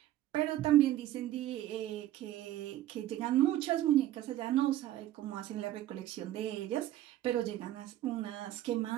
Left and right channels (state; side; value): quieter; left; 13.7 dB